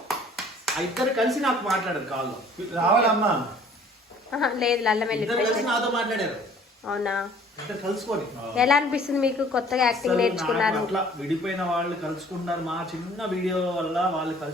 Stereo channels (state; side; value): normal; both; correlation 0.54